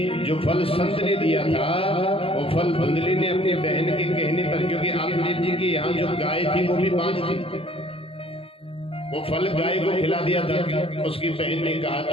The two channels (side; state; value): right; late; 0.27 ms